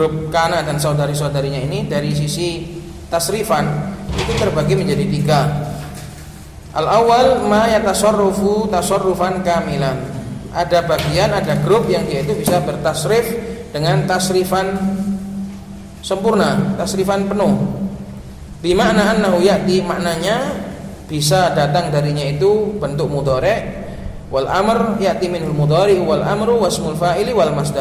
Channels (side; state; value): both; identical; correlation 1.00